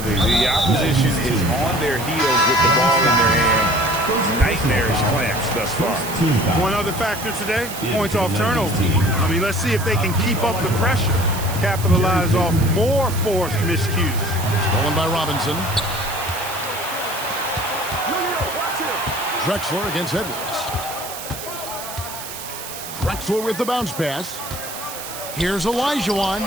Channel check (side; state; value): right; noise; hiss, 10 dB below the sound